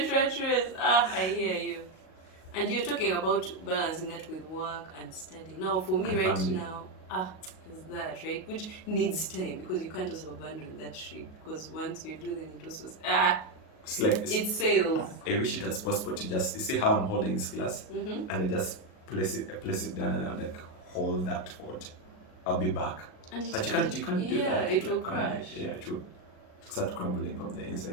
rat race. I hear you. And you're talking about balancing that with work and studying. Now, for me, right now, is that, right? Which needs time, because you can't also abandon that ship, because once you do, then it also it's like it sails. I wish it was possible to just, you see how I'm holding this glass, and I just place it down, and I'm like, hold that forward. I'll be back. But you can't do that. It will crash. Yeah, it will start crumbling from the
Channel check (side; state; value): right; late; 38 ms